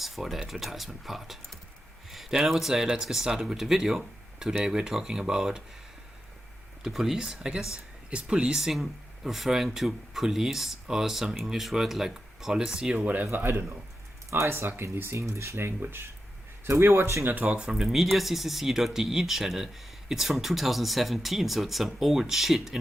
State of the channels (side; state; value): both; normal; correlation 0.89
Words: for the advertisement part. Then I would say let's get started with the video. Today we're talking about the police, I guess. Is policing referring to police or some English word like policy or whatever? I don't know. I suck in this English language. So we're watching a talk from the mediaccc.de channel. It's from 2017, so it's some old shit,